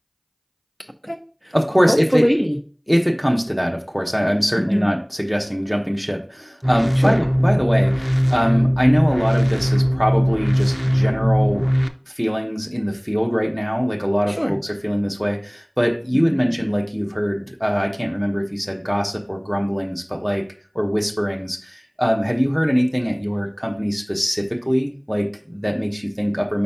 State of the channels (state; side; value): identical; both; correlation 1.00